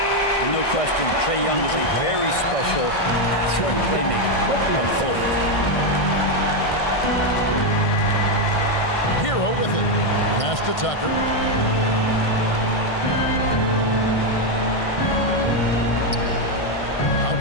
No question, Trae Young is a very special passer and playmaker on the floor. Hero with it. Pass to Tucker.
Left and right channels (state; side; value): late; right; 1.6 ms